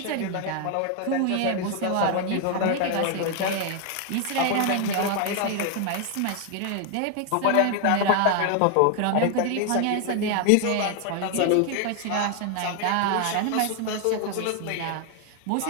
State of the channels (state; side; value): different; both; correlation 0.00